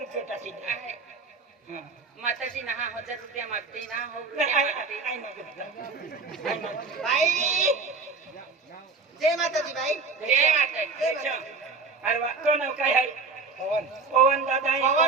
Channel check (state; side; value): quieter; left; 4.4 dB